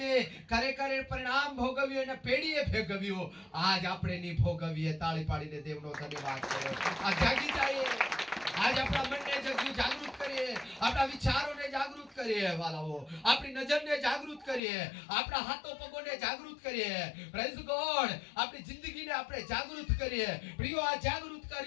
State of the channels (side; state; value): right; drops out; at 14.6 s